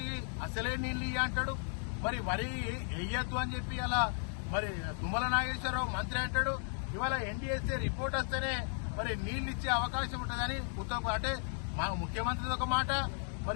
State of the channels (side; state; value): right; silent; 54 dB below the other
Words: అసలే నీళ్లు ఇయ్య అంటాడు, మరి వరి వేయద్దు అని చెప్పి అలా మరి తుమ్మల నాగేశ్వరరావు మంత్రి అంటాడు. ఇవాళ ఎన్డీఎస్ఏ రిపోర్ట్ వస్తేనే మరి నీళ్లు ఇచ్చే అవకాశం ఉంటుందని ఉత్తమ్, అంటే మా ముఖ్యమంత్రిది ఒక మాట,